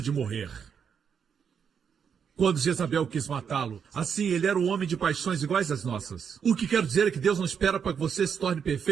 de morrer. Quando Jezabel quis matá-lo, assim, ele era um homem de paixões iguais às nossas. O que quero dizer é que Deus não espera para que você se torne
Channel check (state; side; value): quieter; left; 7.1 dB